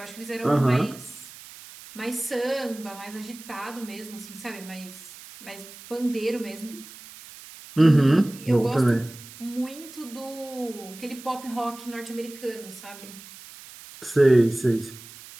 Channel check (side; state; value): right; noise; hiss, 17 dB below the sound